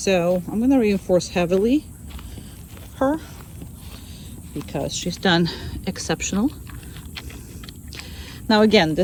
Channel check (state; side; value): identical; both; correlation 1.00